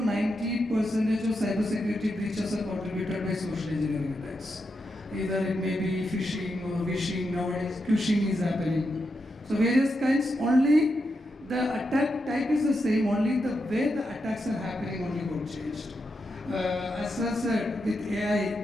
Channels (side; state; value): both; normal; correlation 0.85